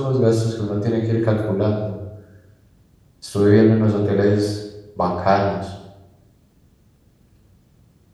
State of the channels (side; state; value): both; identical; correlation 1.00